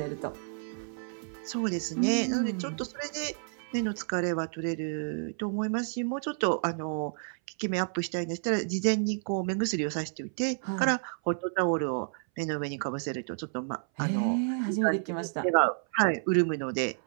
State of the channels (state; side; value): silent; left; 58 dB below the other